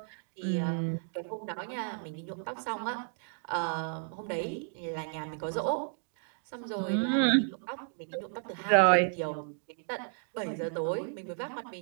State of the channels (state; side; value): silent; left; 56 dB below the other